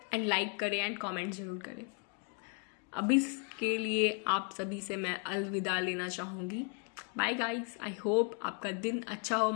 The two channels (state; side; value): quieter; right; 36.7 dB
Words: एंड लाइक करें एंड कमेंट ज़रूर करें। अभी के लिए आप सभी से मैं अलविदा लेना चाहूँगी। बाय गाइस, आई होप आपका दिन अच्छा हो,